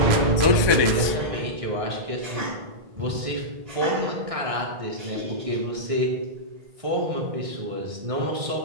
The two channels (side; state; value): left; late; 1.2 ms